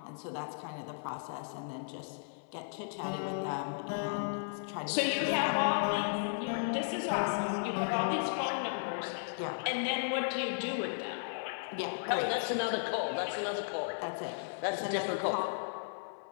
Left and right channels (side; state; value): right; silent; 54 dB below the other